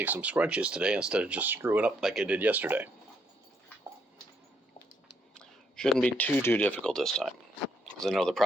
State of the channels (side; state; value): both; normal; correlation 0.73